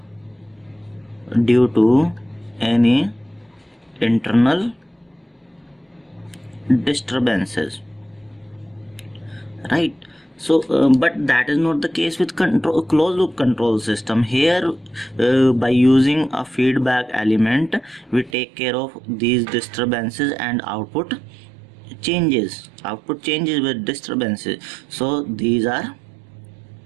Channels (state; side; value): drops out; left; at 18.4 s